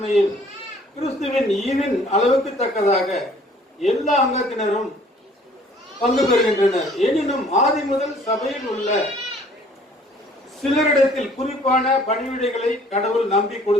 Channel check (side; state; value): both; normal; correlation 0.56